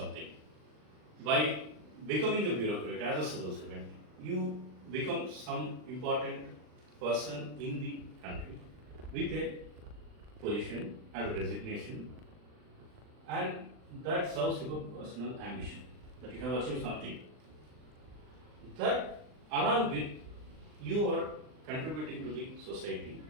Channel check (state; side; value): late; left; 39 ms